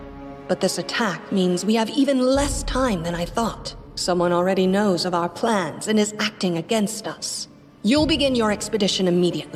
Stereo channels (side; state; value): both; identical; correlation 1.00